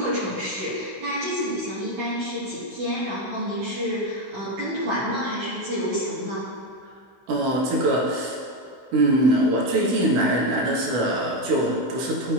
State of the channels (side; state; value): left; late; 16 ms